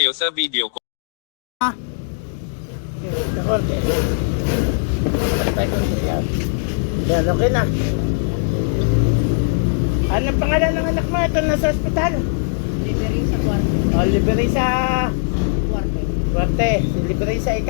sa video ko. Yan, okay na. Anong pangalan ng anak mo? Ito nasa ospital. Liberisa Cuarte. O, Liberisa Cuarte. Cuarte. Si Liberisa,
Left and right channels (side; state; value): right; silent; digital silence